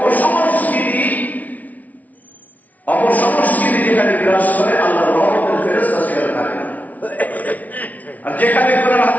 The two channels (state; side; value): late; right; 0.073 ms